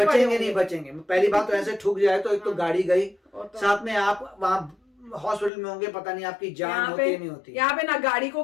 बचेंगे होंगे। नहीं बचेंगे। पहली बात तो ऐसे ठुक जाए तो एक तो गाड़ी गई, वो तो- साथ में आप वहाँ हॉस्पिटल में होंगे, पता नहीं आपकी जान यहाँ होती पे है नहीं होती। यहाँ पे ना गाड़ी को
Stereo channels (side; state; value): right; drops out; at 5.5 s